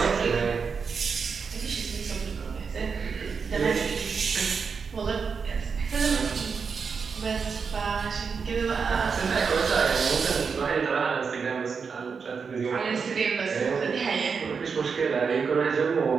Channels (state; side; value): quieter; left; 5.6 dB